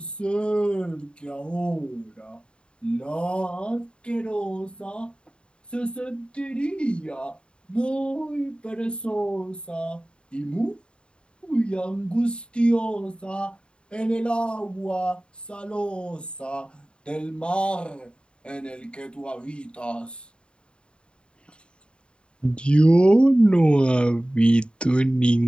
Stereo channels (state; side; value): late; right; 0.053 ms